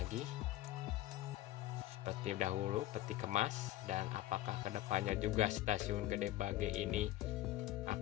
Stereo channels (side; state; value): right; quieter; 15.0 dB